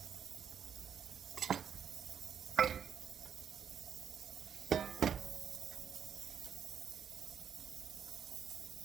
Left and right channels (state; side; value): quieter; left; 8.1 dB